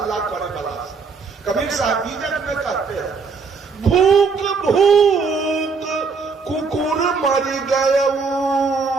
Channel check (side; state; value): left; quieter; 5.0 dB